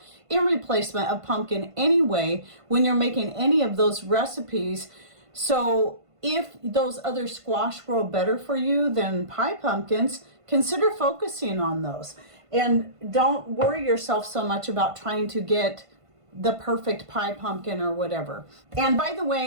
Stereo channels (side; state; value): left; late; 1.5 ms